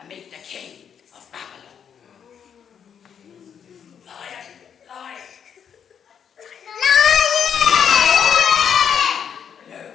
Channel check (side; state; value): right; quieter; 7.9 dB